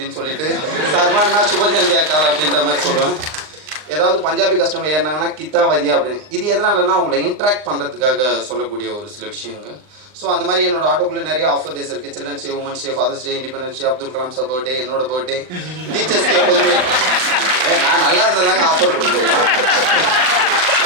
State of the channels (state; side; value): late; left; 39 ms